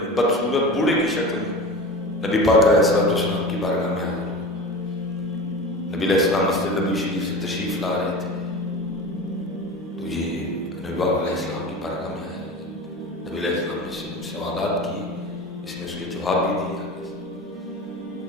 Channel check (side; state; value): both; normal; correlation 0.31